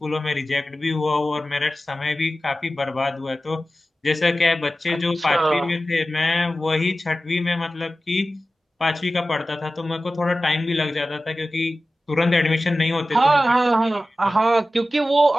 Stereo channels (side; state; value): both; normal; correlation 0.95